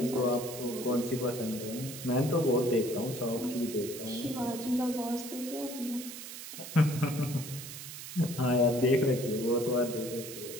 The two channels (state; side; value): noise; right; hiss, 10 dB below the sound